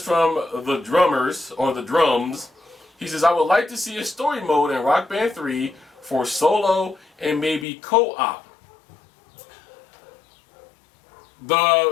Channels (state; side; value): drops out; right; at 7.7 s